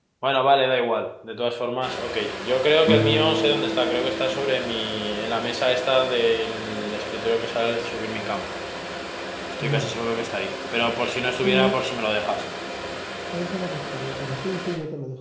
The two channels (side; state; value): both; identical; correlation 1.00